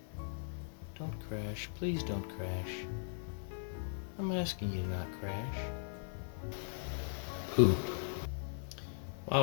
Don't crash. Please don't crash. I'm asking you to not crash. Poop.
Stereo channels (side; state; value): right; silent; 52 dB below the other